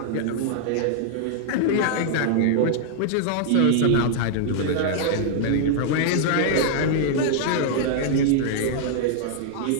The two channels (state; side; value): different; both; correlation -0.01